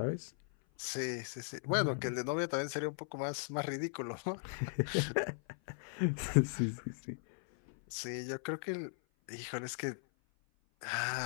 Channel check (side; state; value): right; silent; 53 dB below the other